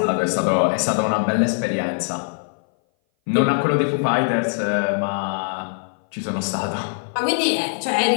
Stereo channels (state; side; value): silent; right; 58 dB below the other